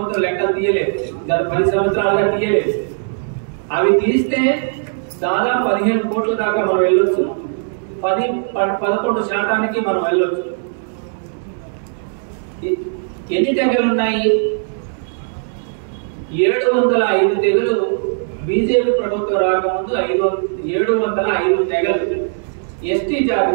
లెక్కలు తీయలేదు, గత 10 సంవత్సరాలుగా తీయలేదు. అవి తీస్తే దాదాపు 15 కోట్ల దాకా మనం వెళ్ళొచ్చు. 11% మనం వెళ్ళొచ్చు. ఎన్ని తెగలు ఉన్నాయి? 705 తెగలు. బీజేపీ ప్రభుత్వం రాకముందు 705 తెగలు ఎస్టీ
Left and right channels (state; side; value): silent; left; digital silence